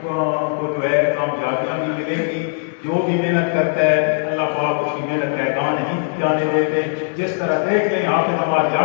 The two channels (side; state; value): right; silent; 66 dB below the other